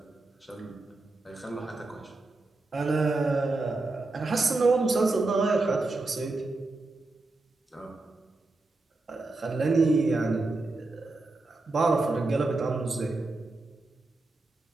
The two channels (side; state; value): left; quieter; 3.2 dB